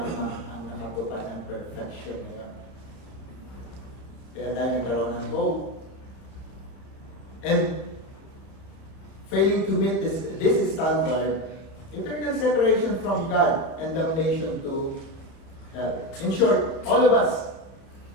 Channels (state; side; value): late; right; 31 ms